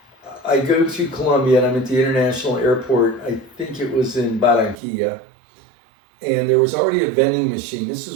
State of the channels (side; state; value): left; drops out; at 4.8 s